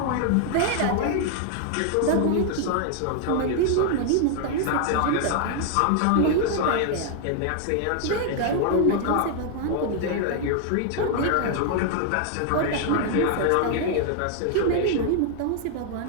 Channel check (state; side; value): different; both; correlation 0.00